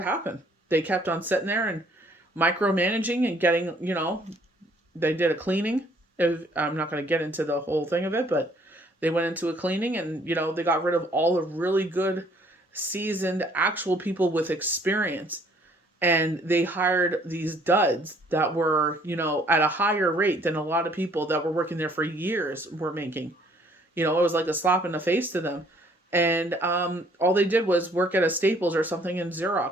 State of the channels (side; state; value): both; normal; correlation 0.61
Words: happened. They kept on sitting there and micromanaging and getting, you know, they did a cleaning. I'm not going to get into the whole thing of it, but they went into a cleaning and, you know, they got rid of all the really good, seasoned, actual people with experience. And they hired these duds that were, you know, at a higher rate than a lot of people that were working there for years were making. You know, it was like a slap in the face to them. And all they did was work at a Staples or something and